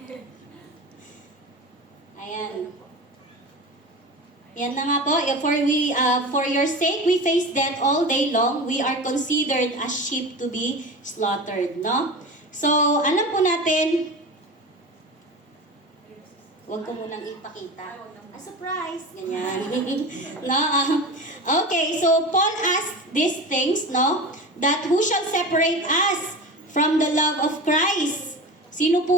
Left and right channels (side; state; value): both; normal; correlation 0.30